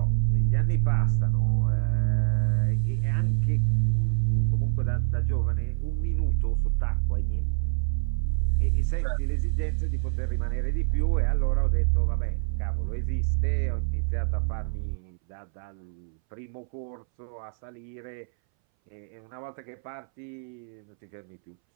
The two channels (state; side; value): silent; left; 60 dB below the other